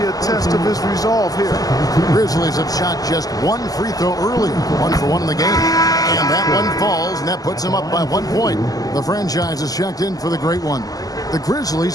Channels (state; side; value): late; right; 0.17 ms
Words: a test of his resolve here. Grizzlies have shot just one free throw earlier, 1 for 1 in the game. And that one falls, and that puts them up by 1 point. The franchise is checked in for the great one. The